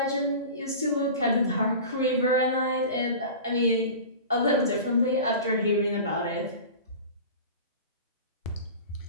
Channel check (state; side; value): inverted; both; correlation -0.35